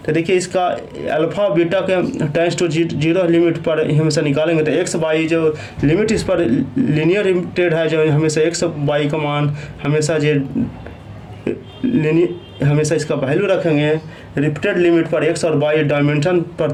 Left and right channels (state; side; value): identical; both; correlation 1.00